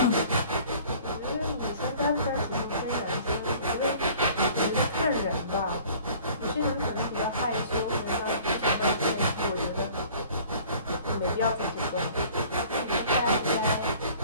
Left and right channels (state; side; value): inverted; both; correlation -0.50